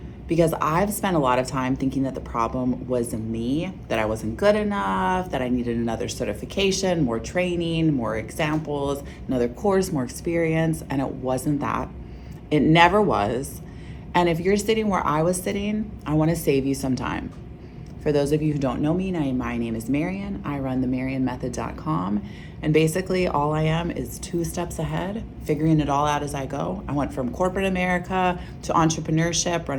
because I've spent a lot of time thinking that the problem was me, that I wasn't good enough, that I needed another certification, more training, more examples, another course, more experience, and it wasn't that. It never was. And if you're sitting where I was sitting, I want to save you some time. For those of you who don't know me, my name is Marian. I run the MarianMethod.com. And basically, all I am is 2 steps ahead, figuring it all out as I go. I went from corporate America to entrepreneurship,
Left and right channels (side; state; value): both; identical; correlation 1.00